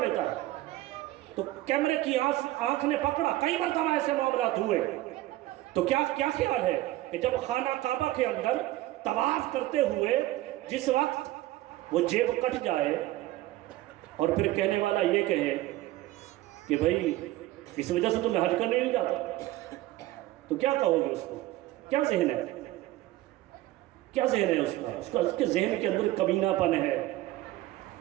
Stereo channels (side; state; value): left; quieter; 16.4 dB